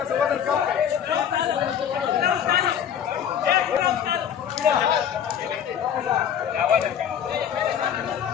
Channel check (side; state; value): right; quieter; 8.9 dB